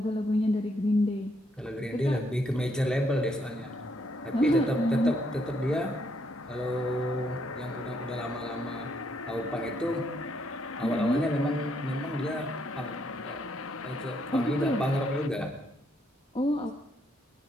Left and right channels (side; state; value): both; normal; correlation 0.74